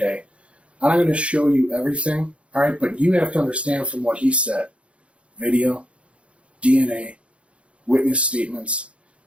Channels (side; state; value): left; late; 0.061 ms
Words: I'm not going to show you everything. All right. But you have to understand from what he said, video, DNA, witness statements.